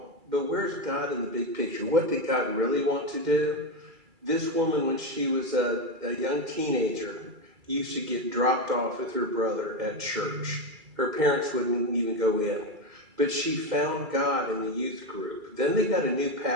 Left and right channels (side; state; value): left; late; 2.3 ms